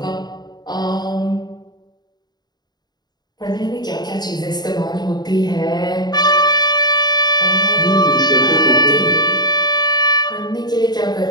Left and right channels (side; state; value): right; late; 0.20 ms